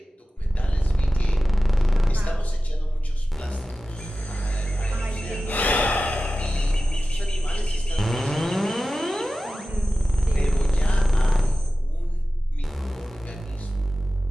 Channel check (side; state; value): both; normal; correlation 0.95